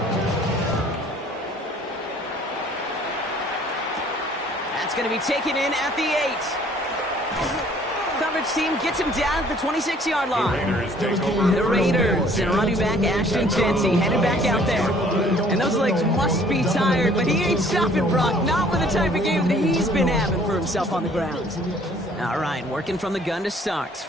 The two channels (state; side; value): normal; both; correlation 0.57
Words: That's going to be taken in at the 8. Coverage team gets him down at the 26-yard line. The Raiders and running back Ashton Jency headed back out there. And those legs must be tired, but he ain't stopping, Brock. Not with the type of game that he's been having for himself on the ground. All right, working from the gun to start.